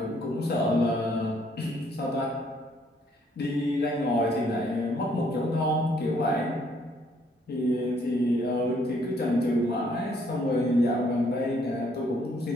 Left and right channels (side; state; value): both; normal; correlation 0.66